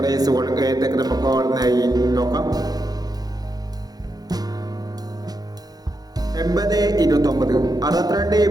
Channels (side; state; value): left; late; 0.19 ms